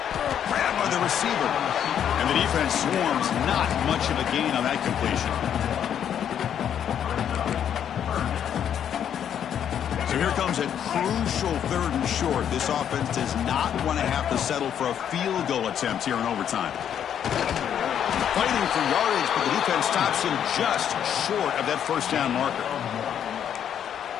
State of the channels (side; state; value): right; quieter; 9.2 dB